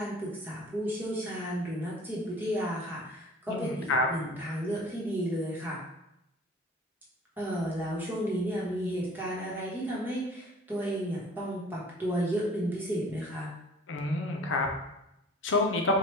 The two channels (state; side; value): normal; both; correlation 0.47